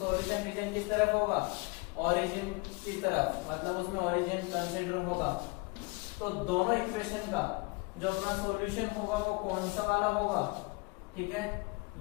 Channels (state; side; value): quieter; right; 27.8 dB